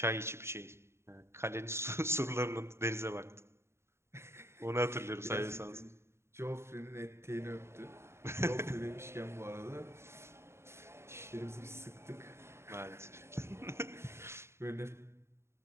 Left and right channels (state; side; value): late; left; 0.13 ms